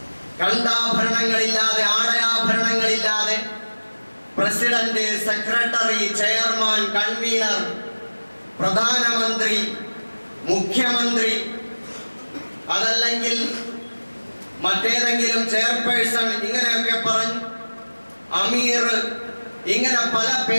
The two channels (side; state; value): both; inverted; correlation -1.00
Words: കണ്ടാഭരണങ്ങളില്ലാതെ, ആടയാഭരണങ്ങളില്ലാതെ പ്രസിഡന്റ്, സെക്രട്ടറി, ചെയർമാൻ, കൺവീനർ, പ്രധാനമന്ത്രി, മുഖ്യമന്ത്രി, അതല്ലെങ്കിൽ മറ്റേതെങ്കിലും ചെയർപേഴ്സൺ, ഇങ്ങനെയൊക്കെ പറഞ്ഞ് അമീർ, ഇങ്ങനെ പല